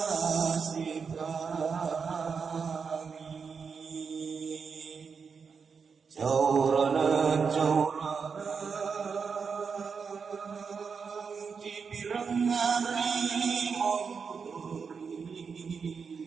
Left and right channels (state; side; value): quieter; left; 5.7 dB